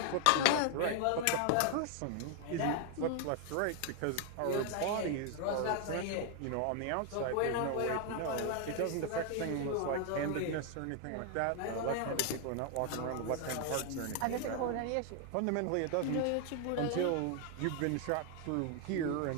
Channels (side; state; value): both; different; correlation 0.00